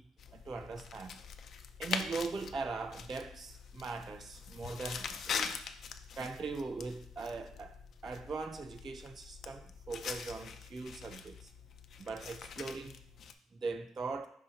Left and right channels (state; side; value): normal; both; correlation 0.76